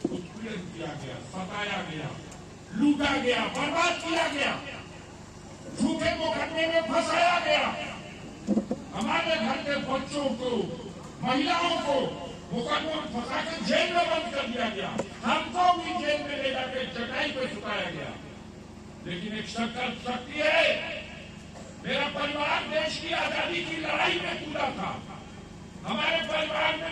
उत्पीड़न किया गया, सताया गया, लूटा गया, बर्बाद किया गया, झूठे मुकदमे में फंसाया गया। हमारे घर के बच्चों को महिलाओं को मुकदमे में फंसा के जेल में बंद कर दिया गया, हमको भी जेल में ले जाकर चटाई पे सुताया गया। लेकिन एक शक्ति है, मेरा परिवार देश की आजादी की लड़ाई में कूदा था। हमारे परिवार में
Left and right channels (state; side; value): identical; both; correlation 1.00